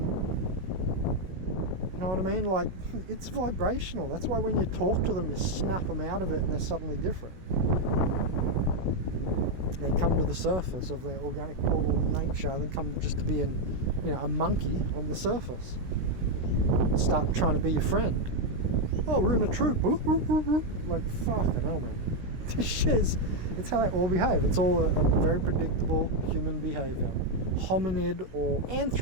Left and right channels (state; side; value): late; left; 16 ms